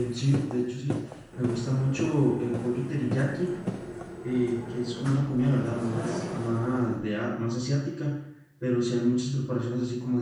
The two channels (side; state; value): both; identical; correlation 1.00